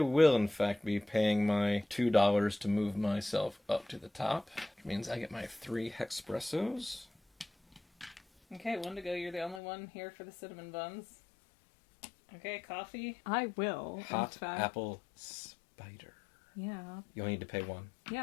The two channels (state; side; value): drops out; right; at 9.6 s